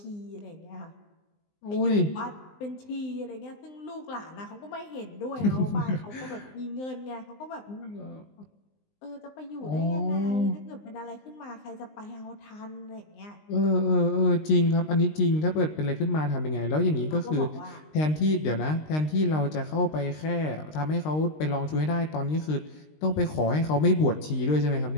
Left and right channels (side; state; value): right; late; 19 ms